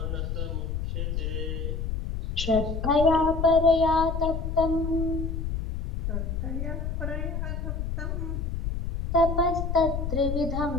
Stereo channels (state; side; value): noise; left; rumble, 3 dB below the sound